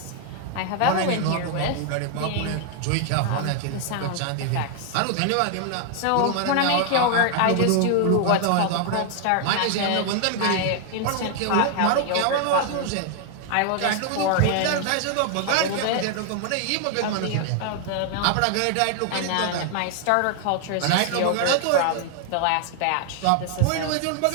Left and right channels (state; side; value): different; both; correlation 0.00